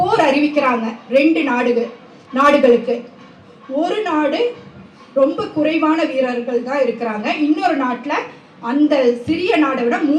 அறிவிக்கிறாங்க 2 நாடுகளுக்கு. ஒரு நாடு ரொம்ப குறைவான வீரர்கள் தான் இருக்கிறாங்க, இன்னொரு நாட்டில் அந்த சிறிய நாடை விட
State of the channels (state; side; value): identical; both; correlation 1.00